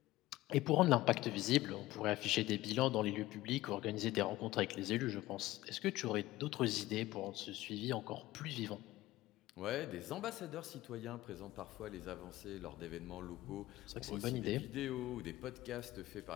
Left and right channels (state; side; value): quieter; right; 17.1 dB